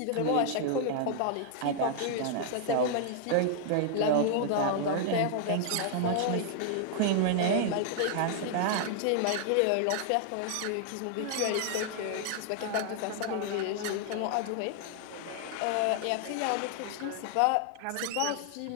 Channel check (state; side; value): different; both; correlation 0.00